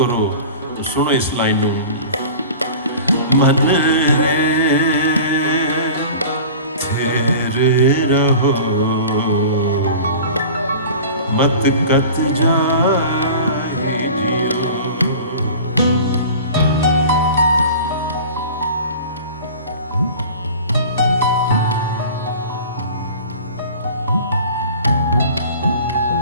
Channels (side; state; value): both; inverted; correlation -0.39